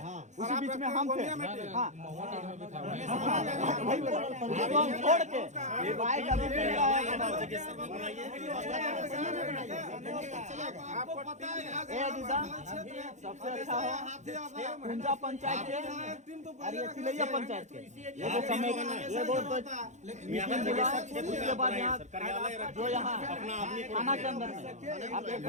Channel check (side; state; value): left; late; 0.34 ms